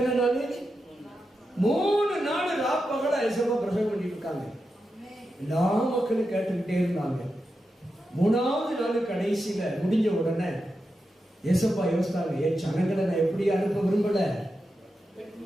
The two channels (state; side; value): normal; both; correlation 0.89